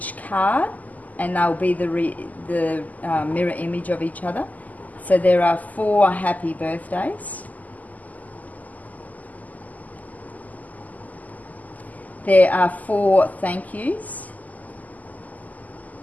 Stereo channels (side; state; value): right; late; 0.079 ms